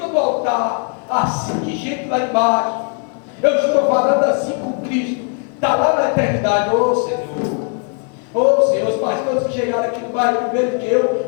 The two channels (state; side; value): quieter; right; 39.5 dB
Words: do altar, assim de gente lá embaixo, eu estou falando assim com Cristo, está lá na eternidade. Ô Senhor, os pastores que chegaram aqui no bairro primeiro que eu